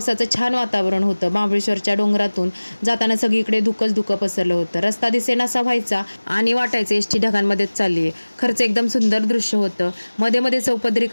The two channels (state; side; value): inverted; both; correlation -1.00